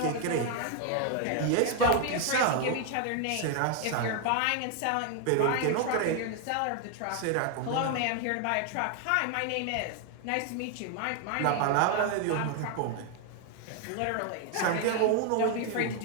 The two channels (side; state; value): both; different; correlation 0.00